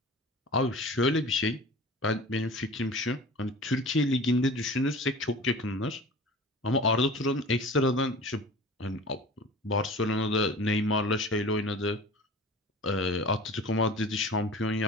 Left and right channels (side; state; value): both; normal; correlation 0.39